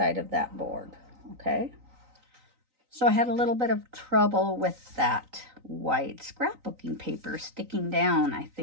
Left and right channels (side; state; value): left; late; 3.9 ms